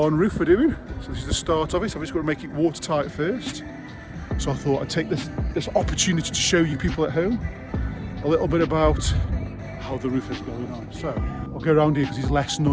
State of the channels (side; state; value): both; identical; correlation 1.00